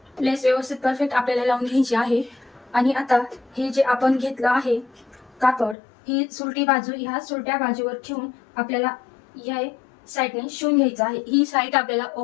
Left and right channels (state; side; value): drops out; right; at 5.8 s